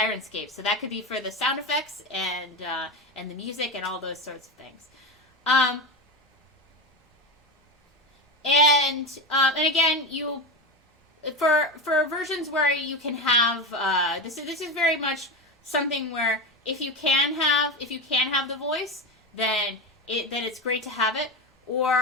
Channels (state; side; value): normal; both; correlation 0.19